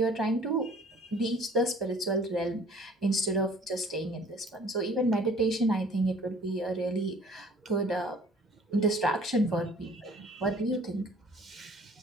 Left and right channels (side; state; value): both; normal; correlation 0.53